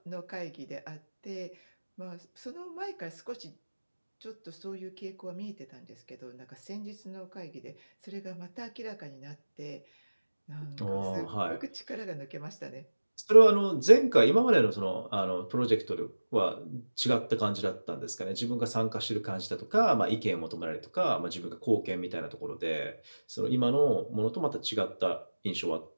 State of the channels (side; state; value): both; inverted; correlation -1.00